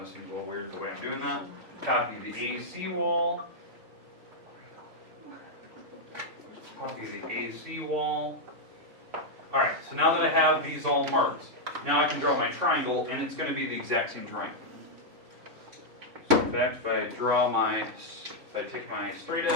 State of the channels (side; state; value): left; late; 3.6 ms